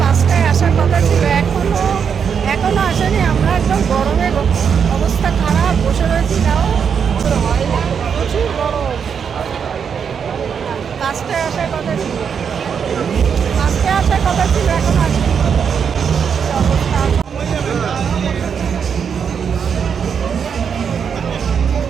5টায় আসার কথা ছিল, এখনো আসেনি। আমরা একদম গরমে অবস্থা খারাপ, বসে রয়েছি। তাও হয় না, প্রচুর গরম। 5টায় আসার কথা ছিল, 5টায় আসার কথা ছিল, এখন আসেনি। অবস্থা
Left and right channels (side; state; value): left; quieter; 7.0 dB